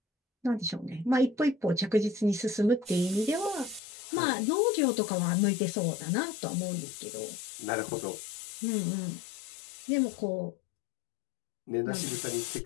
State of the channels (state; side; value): drops out; right; at 3.8 s